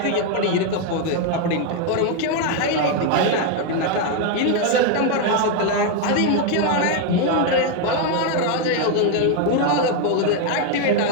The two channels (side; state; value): both; different; correlation 0.01